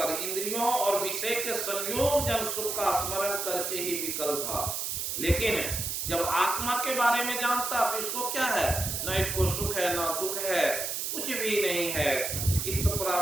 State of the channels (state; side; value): noise; right; hiss, 2 dB below the sound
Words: इंद्रियों और विषय के संयोग जन सुख का स्मरण करके ही विकल था, लेकिन जब आत्मा के बारे में जानता तो इसको क्या है, न इसको सुख है न दुख है, कुछ भी नहीं है। इस